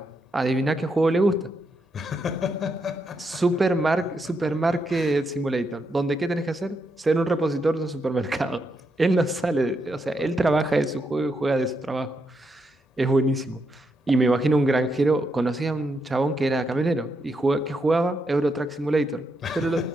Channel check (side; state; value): both; normal; correlation 0.81